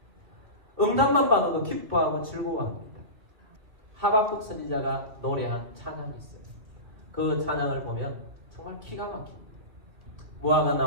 응답만 받아도 기뻐하고 즐거워합니다. 하박국 선지자가 노래한 찬양이 있어요. 그 찬양을 보면 정말 기가 막힙니다. 무화과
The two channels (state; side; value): late; left; 2.5 ms